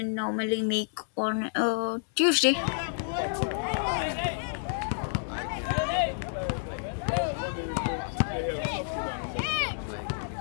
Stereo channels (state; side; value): silent; right; 58 dB below the other